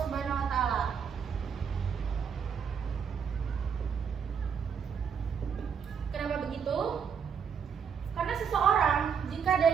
Subhanahu wa taala. Kenapa begitu? Karena seseorang jika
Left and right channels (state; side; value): quieter; left; 6.9 dB